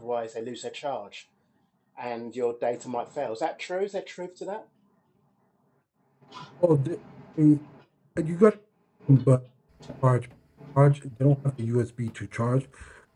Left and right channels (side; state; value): both; identical; correlation 1.00